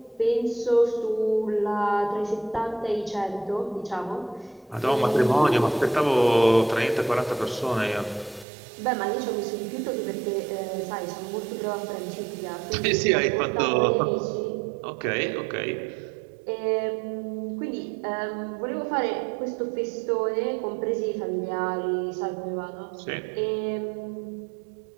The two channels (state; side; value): drops out; left; at 8.5 s